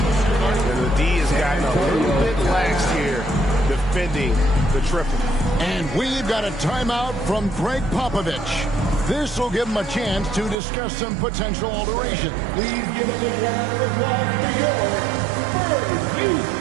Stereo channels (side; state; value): left; drops out; at 10.6 s